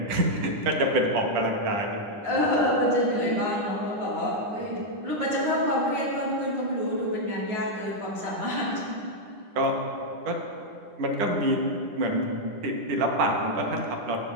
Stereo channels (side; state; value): left; late; 9.9 ms